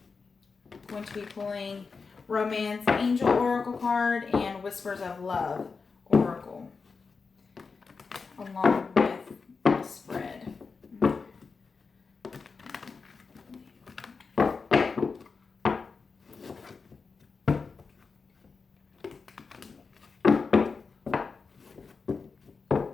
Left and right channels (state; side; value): quieter; right; 4.8 dB